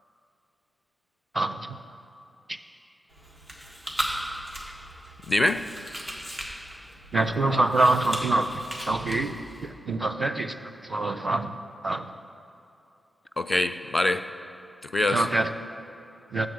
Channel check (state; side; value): normal; both; correlation 0.89